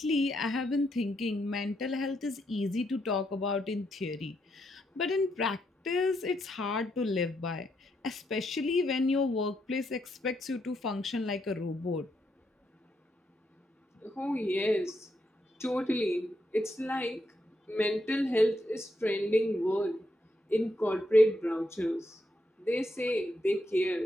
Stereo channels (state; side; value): normal; both; correlation 0.79